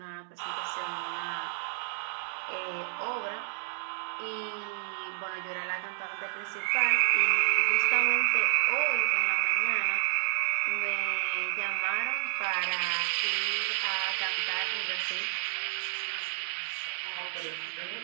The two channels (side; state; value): left; silent; digital silence